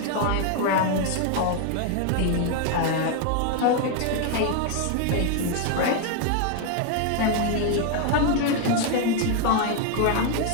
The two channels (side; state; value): both; different; correlation 0.01